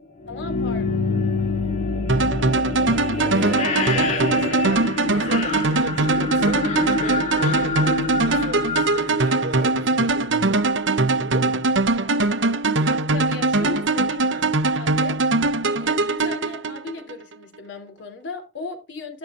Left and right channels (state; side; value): normal; both; correlation 0.15